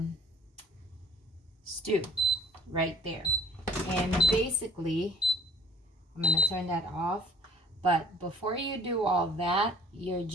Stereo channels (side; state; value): both; normal; correlation 0.51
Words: stew right there. And basically, I'm gonna turn that off. But before you do all that, you're